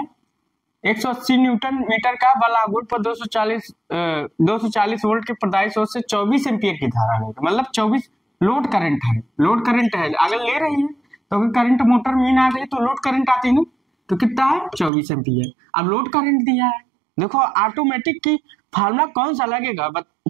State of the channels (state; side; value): drops out; left; at 14.9 s